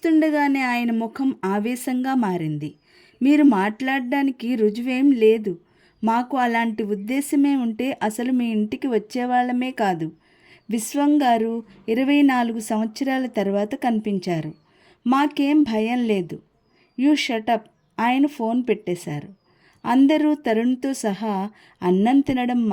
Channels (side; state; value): both; identical; correlation 1.00